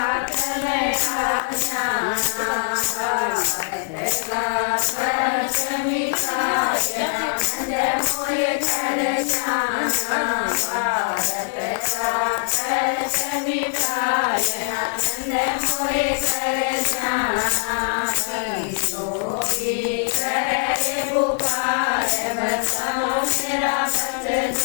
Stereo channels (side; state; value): right; silent; digital silence